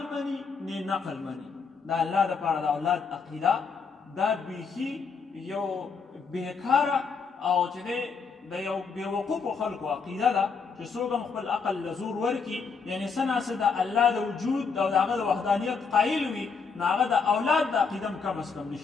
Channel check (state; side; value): quieter; right; 5.4 dB